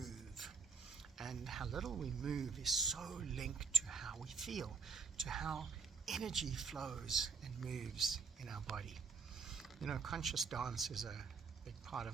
And how little we move is so linked to how we feel, to how energy flows and moves in our body. Conscious dance is a big part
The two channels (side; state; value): left; quieter; 5.1 dB